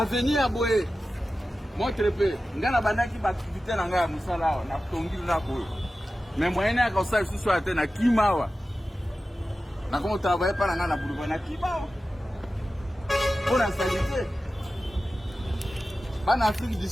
boye montre pe ngana bandaki ba activité na ngaya musala na tongili na boye mais moyen ya ko sa susu ate na kimawa na ko travailler pa na boulevard na kimawa pour la santé bana Afrique du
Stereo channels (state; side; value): normal; both; correlation 0.94